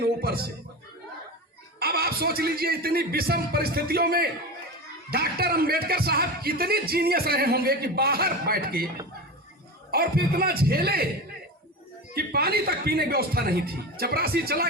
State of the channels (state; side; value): normal; both; correlation 0.25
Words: ऊपर से। अब आप सोच लीजिए इतनी विषम परिस्थितियों में डॉक्टर अंबेडकर साहब कितने जीनियस रहे होंगे कि बाहर बैठ के, और फिर इतना झेले कि पानी तक पीने की व्यवस्था नहीं थी। चपरासी चला